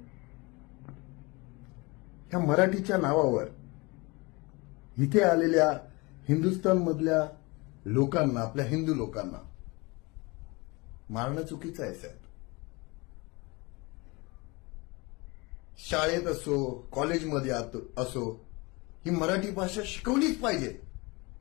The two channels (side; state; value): right; quieter; 25.6 dB